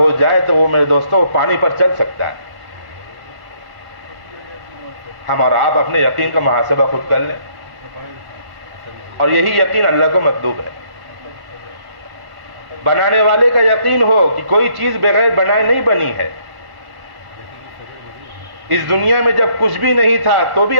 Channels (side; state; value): left; late; 1.1 ms